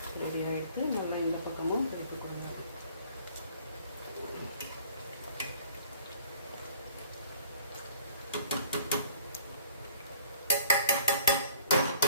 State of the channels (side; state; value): both; inverted; correlation -0.53